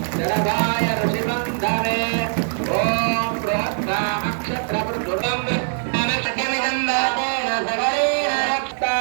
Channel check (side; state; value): left; silent; digital silence